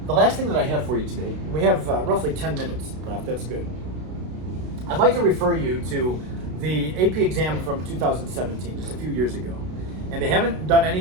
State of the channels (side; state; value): left; late; 32 ms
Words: The last thing that I have for you today, we have roughly 10 minutes left, that's good. I'd like to refer you to the AP exam from 2017, just a few years ago. And they haven't done